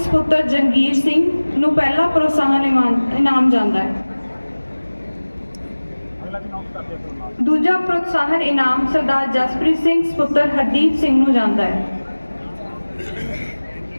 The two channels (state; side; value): inverted; both; correlation -1.00